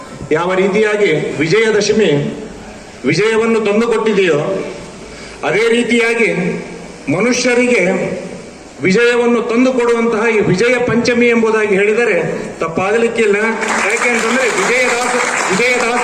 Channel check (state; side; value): identical; both; correlation 1.00